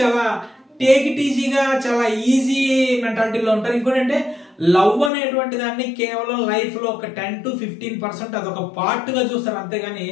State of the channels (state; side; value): drops out; right; at 5.1 s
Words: చాలా టేక్ ఇట్ ఈజీగా, చాలా ఈజీ మెంటాలిటీలో ఉంటారు. ఇంకోటి అంటే లవ్ అనేటువంటి దాన్ని కేవలం లైఫ్ లో ఒక 10-15% అదొక పార్ట్ గా చూస్తారు, అంతేగాని